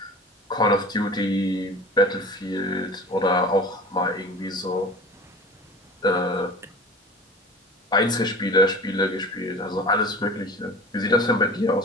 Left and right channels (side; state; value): both; normal; correlation 0.38